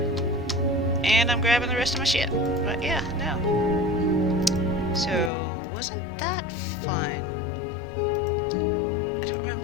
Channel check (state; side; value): drops out; right; at 5.3 s